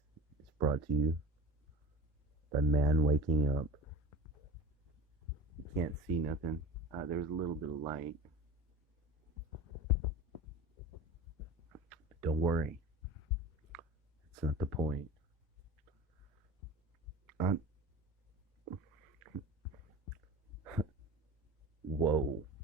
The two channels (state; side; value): normal; both; correlation 0.35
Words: is brought to you by man waking up. You can't see nothing. There's a little bit of light. But don't worry. It's not the point. Whoa.